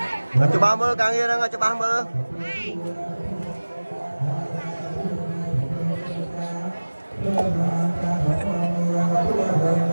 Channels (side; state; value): both; inverted; correlation -1.00